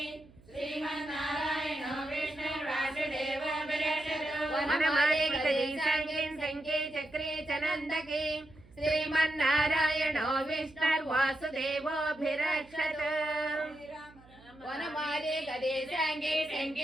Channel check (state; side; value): noise; right; hum, 25 dB below the sound